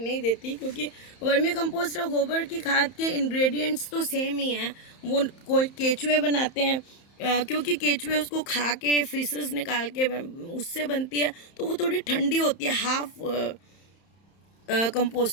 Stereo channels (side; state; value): right; late; 31 ms